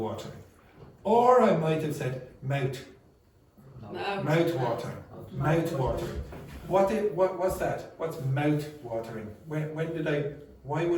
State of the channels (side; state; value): both; identical; correlation 1.00